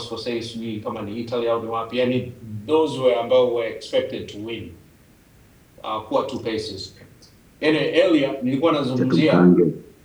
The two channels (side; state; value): both; identical; correlation 1.00